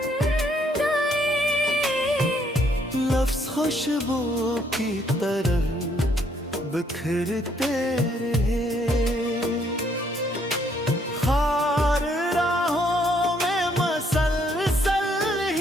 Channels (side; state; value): both; normal; correlation 0.69